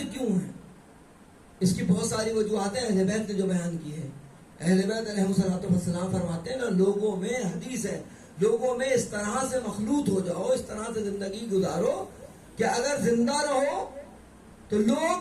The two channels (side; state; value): both; identical; correlation 1.00